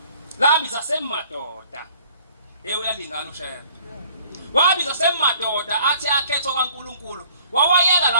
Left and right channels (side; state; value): both; inverted; correlation -0.55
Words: labiza semadoda uyalingana ushaya wabiza semadoda athi akhetho kaNkulunkulu wawayeka